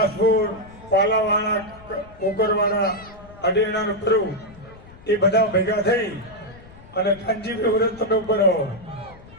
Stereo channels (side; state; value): left; noise; rumble, 21 dB below the sound